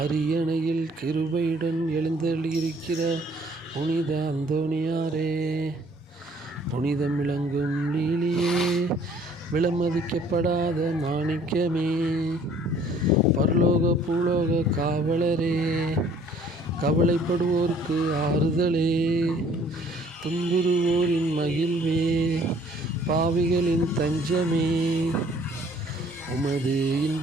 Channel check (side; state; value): both; normal; correlation 0.58